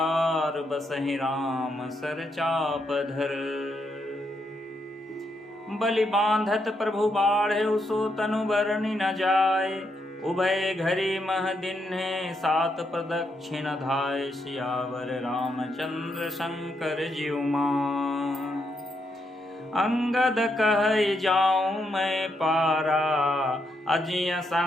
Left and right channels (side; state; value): both; normal; correlation 0.79